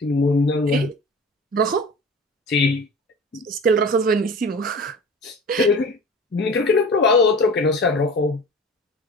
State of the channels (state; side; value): normal; both; correlation 0.38